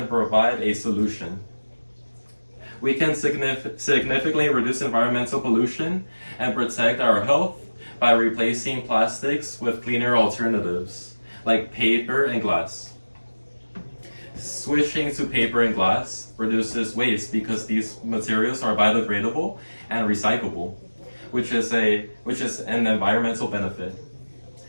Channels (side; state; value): both; inverted; correlation -1.00